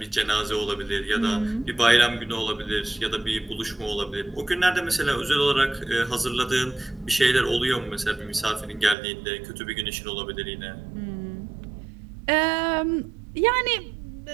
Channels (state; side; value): drops out; left; at 9.0 s